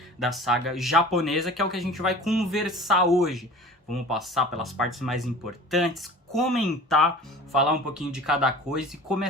da saga japonesa, que é o que a gente vai conversar hoje. Vamos passar pelas partes mais importantes, comentar, falar um pouquinho de cada coisa e como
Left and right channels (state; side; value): normal; both; correlation 0.41